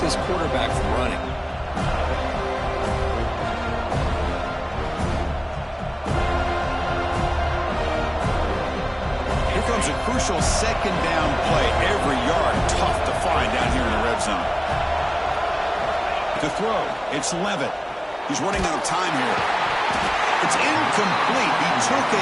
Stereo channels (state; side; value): identical; both; correlation 1.00